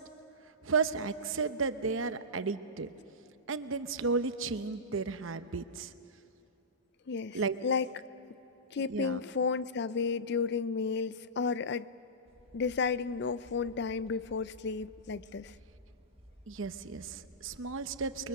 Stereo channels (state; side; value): normal; both; correlation -0.17